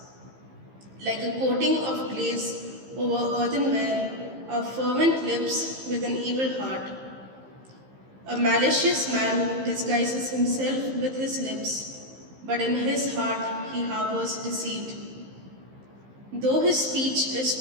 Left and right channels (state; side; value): late; left; 15 ms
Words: Like a coating of glaze over earthenware are fervent lips with an evil heart. A malicious man disguises himself with his lips, but in his heart he harbors deceit. Though his speech is